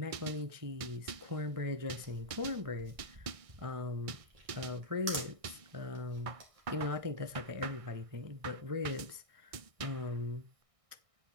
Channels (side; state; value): left; late; 1.6 ms